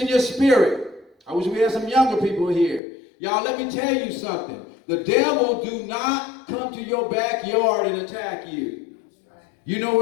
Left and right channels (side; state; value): right; drops out; at 2.8 s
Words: your spirit. I wish we had some younger people here. Y'all, let me tell you something. The devil do not come to your backyard and attack you. You know